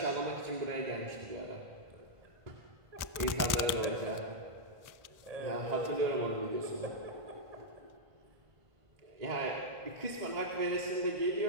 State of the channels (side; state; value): left; late; 1.5 ms